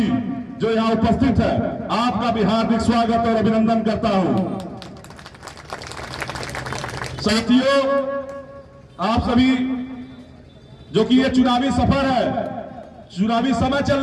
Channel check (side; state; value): both; identical; correlation 1.00